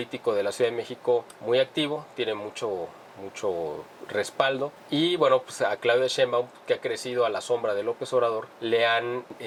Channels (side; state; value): both; identical; correlation 1.00